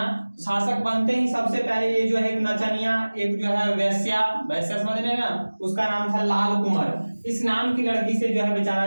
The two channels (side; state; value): both; inverted; correlation -1.00